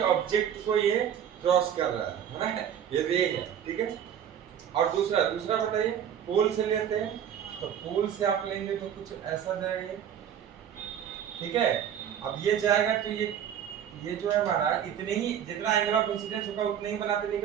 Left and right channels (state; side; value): quieter; left; 9.2 dB